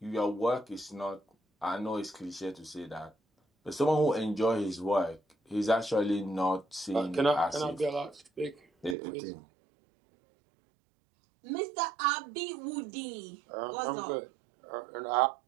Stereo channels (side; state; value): left; drops out; at 9.0 s